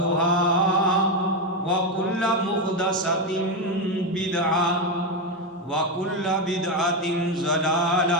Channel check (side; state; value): both; normal; correlation 0.09